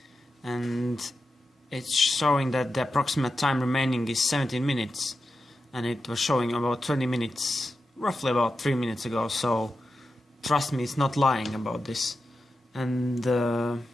and it's showing that the approximate time remaining is 17 minutes, and it was showing about 20 minutes, roughly about 3 minutes ago, so trust me, it's not lying about this. And the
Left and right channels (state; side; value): normal; both; correlation 0.90